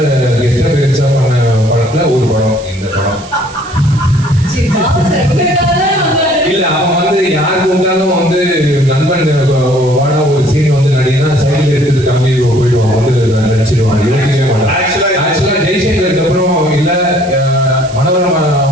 கெஸ்ட் அப்பியரன்ஸா பண்ண படத்துல ஒரு படம் இந்த படம். இல்ல அவன் வந்து யாரு கூப்பிட்டாலும் வந்து நண்பன் வாடா ஒரு சீன் வந்து நடிகனா சைக்கிள் எடுத்து கிளம்பி போயிடுவான், வந்து நடிச்சிருவான், யோசிக்கவே மாட்டான். ஆக்சுவலா ஜெய்சங்கருக்கு அப்புறம் இல்ல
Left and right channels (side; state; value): right; noise; hiss, 19 dB below the sound